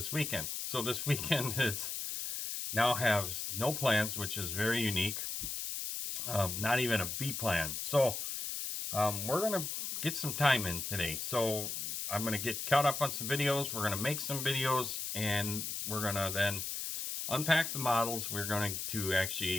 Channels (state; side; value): noise; left; hiss, 4 dB below the sound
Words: weekend. So this weekend is now has no plans, which is very unique. Not even a B plan. So we're going to get some time in today. So I'm going to get caught up on some videos. We're going to make some videos, and we're going to then unpack the models. We're going to